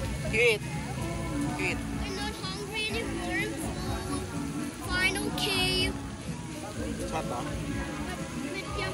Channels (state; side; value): identical; both; correlation 1.00